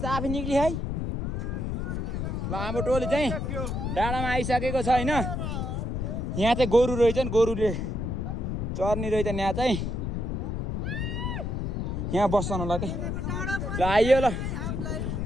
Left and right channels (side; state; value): left; noise; rumble, 2 dB below the sound